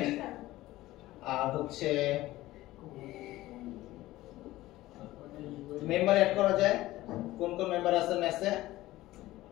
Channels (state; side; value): quieter; right; 16.8 dB